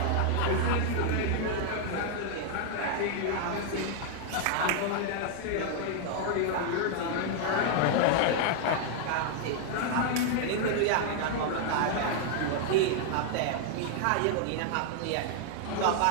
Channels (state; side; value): different; both; correlation 0.00